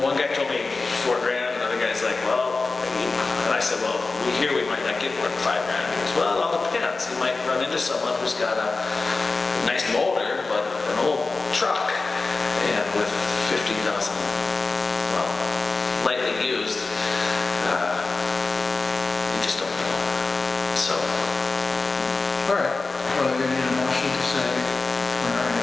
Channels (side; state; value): right; quieter; 3.8 dB